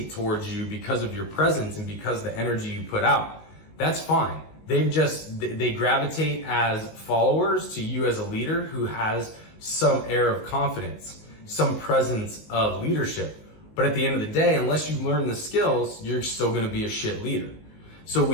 towards you because of your presence and because of the energy you put out. That's fine. They gravitate as followers to you as a leader who has some air of confidence, some presence of leadership. But at the end of the day, unless you learn the skills, you're still going to be a shit leader. So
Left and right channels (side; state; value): right; late; 19 ms